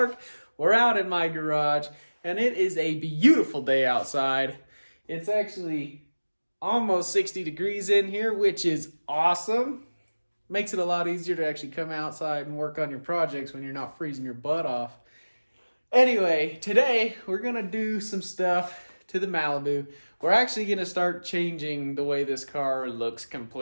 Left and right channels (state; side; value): inverted; both; correlation -1.00